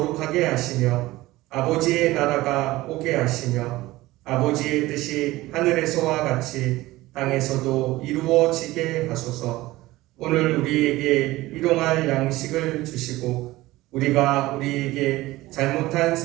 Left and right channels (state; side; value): quieter; left; 18.2 dB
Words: 하시며 아버지의 나라가 오게 하시며 아버지의 뜻이 하늘에서와 같이 땅에서도 이루어지게 하소서. 오늘 우리에게 일용할 양식을 주시고 우리가 우리에게 잘못한